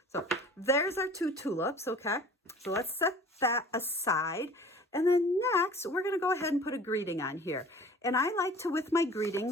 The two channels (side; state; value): both; normal; correlation 0.46